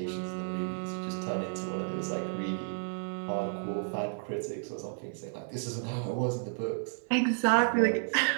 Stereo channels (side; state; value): left; silent; 56 dB below the other